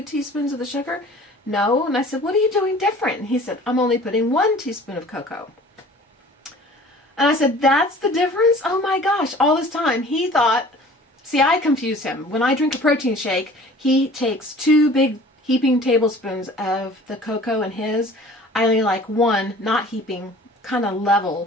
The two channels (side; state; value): both; normal; correlation 0.47